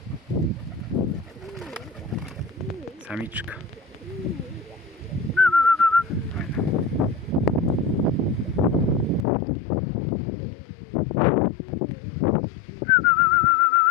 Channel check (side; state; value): right; drops out; at 9.2 s